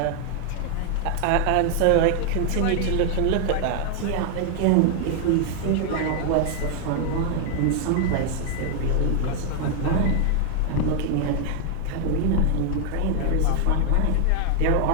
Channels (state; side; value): different; both; correlation 0.00